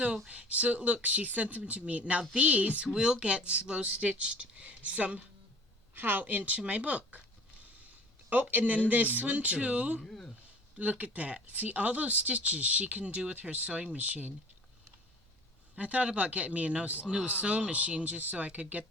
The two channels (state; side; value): normal; both; correlation 0.46